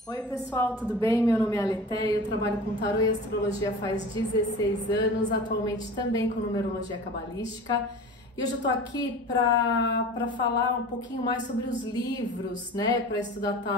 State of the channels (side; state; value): both; normal; correlation 0.37